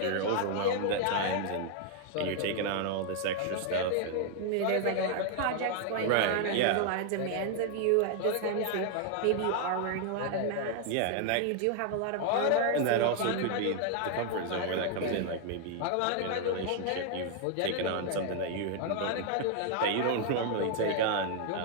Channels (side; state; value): both; different; correlation 0.00